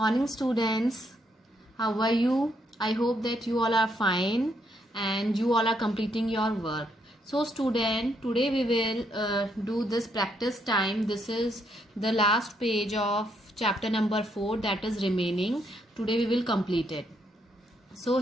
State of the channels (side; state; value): both; normal; correlation 0.75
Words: Morning students, how are you? I hope that you all are fine and you all are completing your work. So student, today we will do this practice time. This is the last page of chapter number 4, that is remaining. Today we will complete it. So